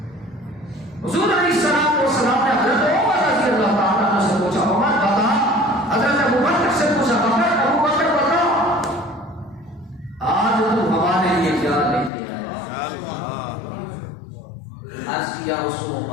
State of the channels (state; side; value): drops out; right; at 12.1 s